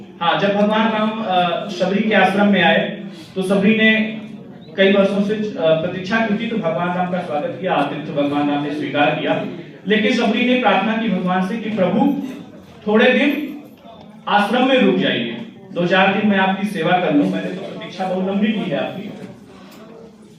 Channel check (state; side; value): identical; both; correlation 1.00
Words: हाँ, जब भगवान राम सबरी के आश्रम में आए तो सबरी ने कई वर्षों से प्रतीक्षा की थी, तो भगवान राम का स्वागत किया, आतिथ्य भगवान राम ने स्वीकार किया। लेकिन सबरी ने प्रार्थना की भगवान से कि प्रभु थोड़े दिन आश्रम में रुक जाइए, 2-4 दिन मैं आपकी सेवा कर लूं, मैंने तो प्रतीक्षा बहुत लंबी की है आपकी।